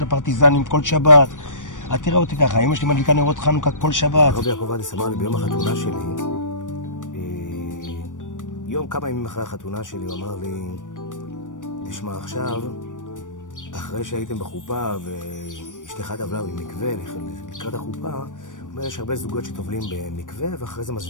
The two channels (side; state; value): right; late; 0.87 ms